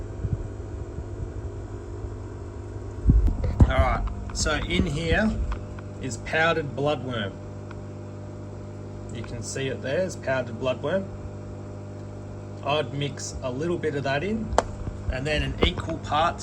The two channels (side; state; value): both; identical; correlation 1.00